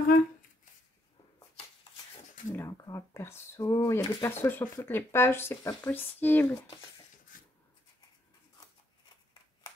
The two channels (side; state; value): both; normal; correlation 0.74